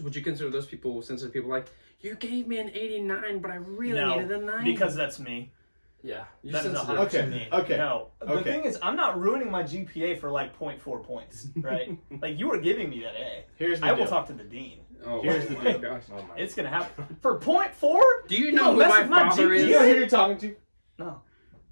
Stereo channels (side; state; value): both; inverted; correlation -1.00